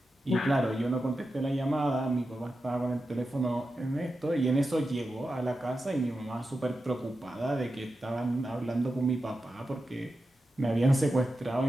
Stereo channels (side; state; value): both; normal; correlation 0.91